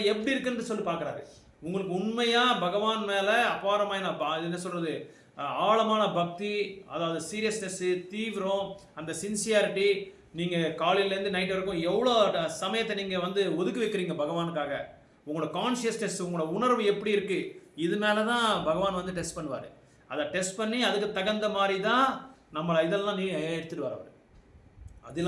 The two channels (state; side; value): identical; both; correlation 1.00